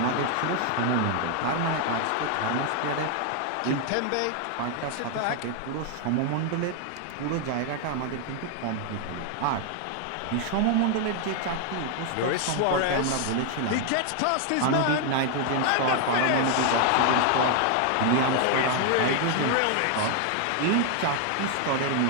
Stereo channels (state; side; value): different; both; correlation 0.00